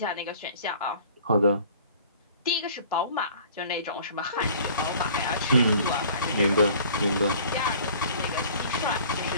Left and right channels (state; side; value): inverted; both; correlation -0.49